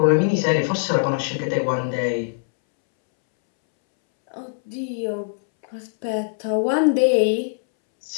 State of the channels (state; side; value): silent; right; 64 dB below the other